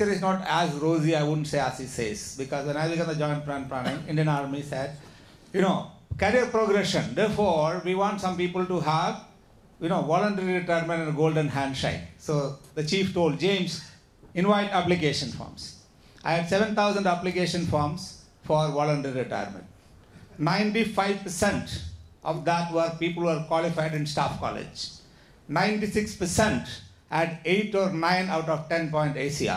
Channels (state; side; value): identical; both; correlation 1.00